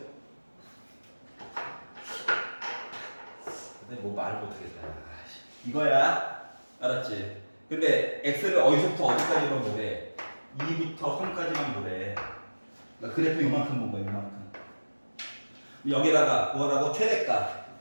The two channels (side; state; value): both; inverted; correlation -1.00